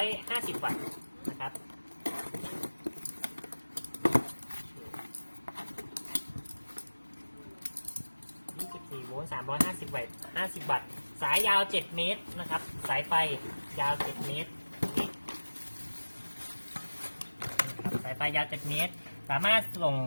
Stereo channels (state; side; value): inverted; both; correlation -1.00